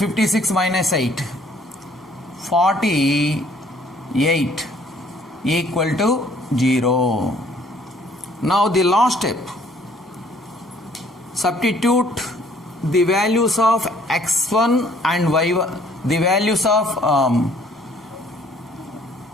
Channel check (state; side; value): normal; both; correlation 0.60